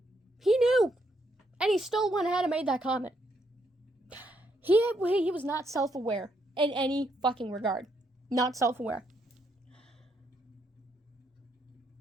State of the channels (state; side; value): normal; both; correlation 0.76